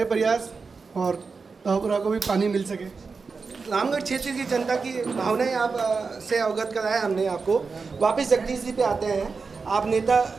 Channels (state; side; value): quieter; left; 4.7 dB